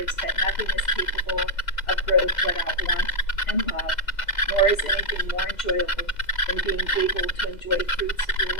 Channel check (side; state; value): right; late; 2.0 ms